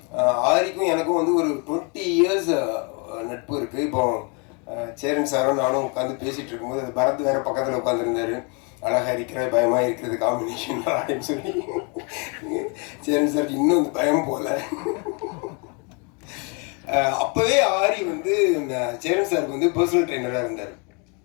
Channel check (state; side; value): quieter; right; 34.4 dB